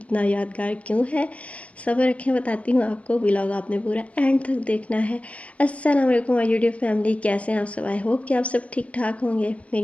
यादगार क्यों है, सब्र रखें बताती हूँ आपको। व्लॉग आपने पूरा एंड तक देखना है। अस्सलाम वालेकुम माय यूट्यूब फैमिली, कैसे हैं आप सब? आई होप कि आप सब ठीक ठाक होंगे।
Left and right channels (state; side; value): late; right; 0.065 ms